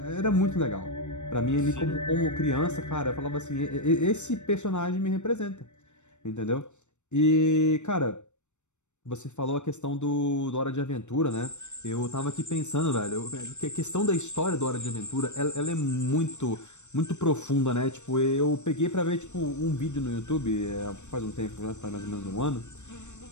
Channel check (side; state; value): right; late; 0.84 ms